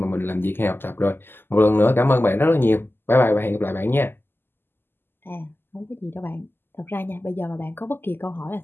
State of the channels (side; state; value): right; late; 0.10 ms